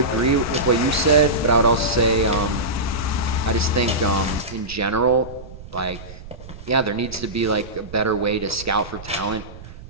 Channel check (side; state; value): right; noise; rumble, 15 dB below the sound